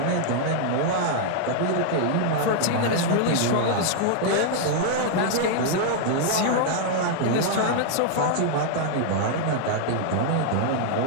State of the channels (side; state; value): both; different; correlation -0.01